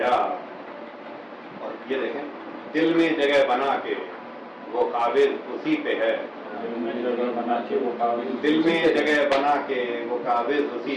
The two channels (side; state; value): both; identical; correlation 1.00